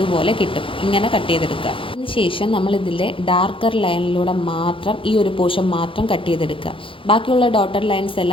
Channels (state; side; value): late; right; 0.25 ms